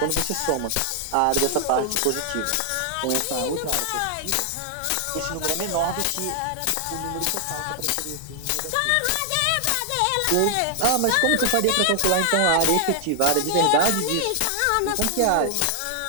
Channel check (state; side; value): different; both; correlation 0.00